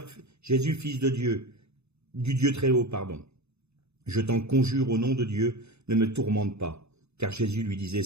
Jésus, fils de Dieu, du Dieu très haut, pardon. Je t'en conjure au nom de Dieu, ne me tourmente pas. » Car Jésus lui disait, «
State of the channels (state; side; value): late; left; 0.80 ms